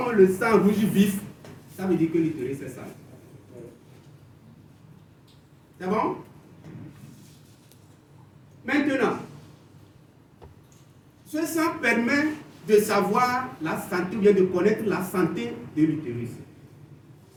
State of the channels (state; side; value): identical; both; correlation 1.00